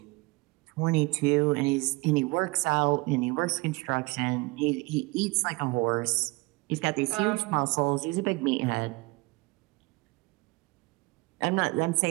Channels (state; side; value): quieter; left; 24.6 dB